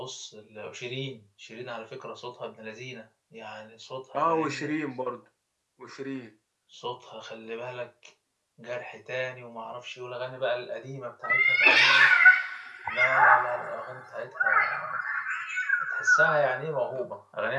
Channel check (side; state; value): both; identical; correlation 1.00